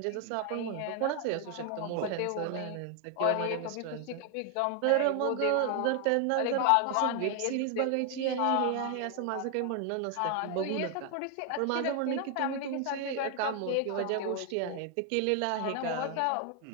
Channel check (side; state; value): both; different; correlation 0.00